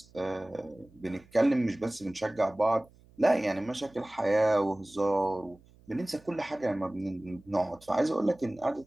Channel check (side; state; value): right; noise; hum, 27 dB below the sound